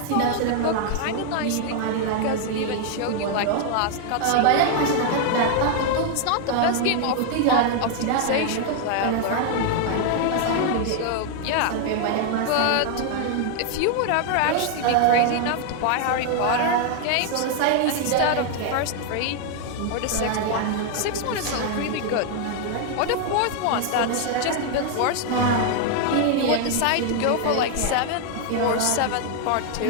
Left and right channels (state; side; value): different; both; correlation 0.00